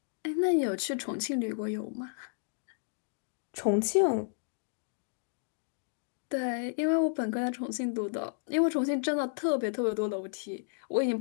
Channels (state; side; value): silent; right; digital silence